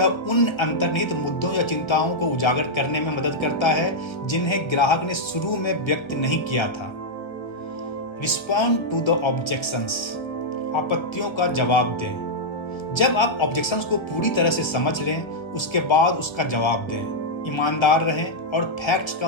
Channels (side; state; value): right; late; 1.4 ms